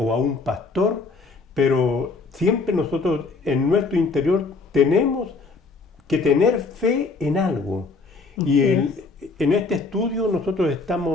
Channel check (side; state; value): right; quieter; 4.0 dB